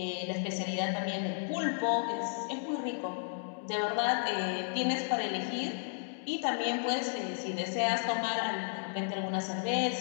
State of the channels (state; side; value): silent; right; 55 dB below the other